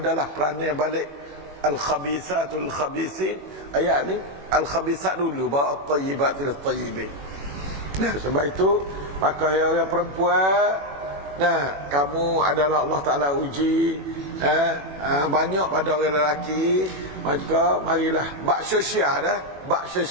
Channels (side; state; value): left; late; 21 ms